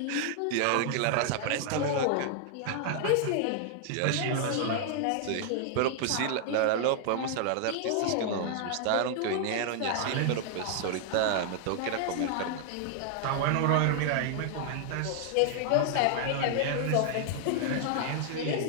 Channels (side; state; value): both; different; correlation -0.01